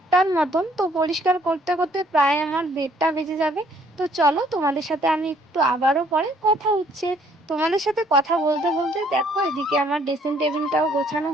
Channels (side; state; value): both; normal; correlation 0.63